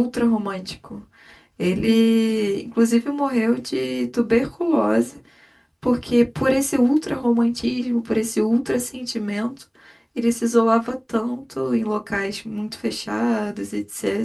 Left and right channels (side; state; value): both; identical; correlation 1.00